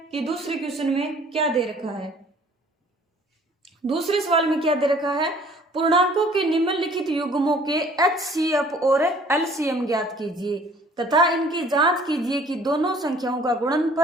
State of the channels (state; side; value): normal; both; correlation 0.55